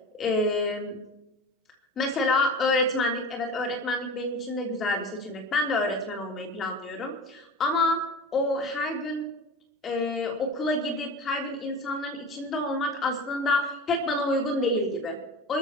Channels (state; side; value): normal; both; correlation 0.32